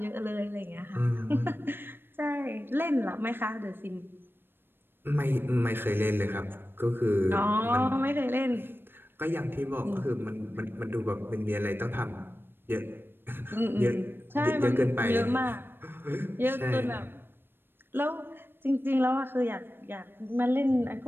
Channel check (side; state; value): left; late; 0.10 ms